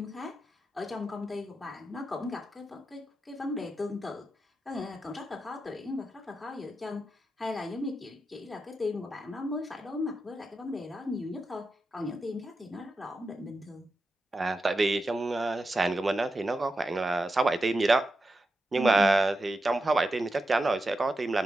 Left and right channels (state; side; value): normal; both; correlation 0.89